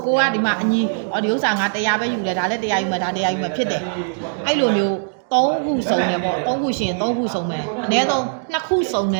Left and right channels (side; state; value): left; silent; digital silence